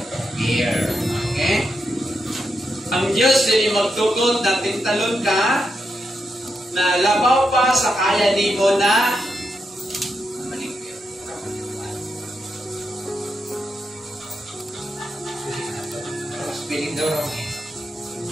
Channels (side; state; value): both; normal; correlation 0.84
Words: bear. Okay? Ang Diyos din magtugon na tintalon ka na labaw pa sa kaya ni mo na spelling daw wrong eh.